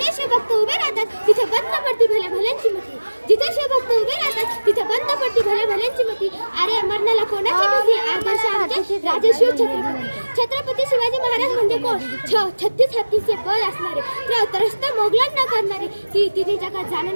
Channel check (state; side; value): inverted; both; correlation -1.00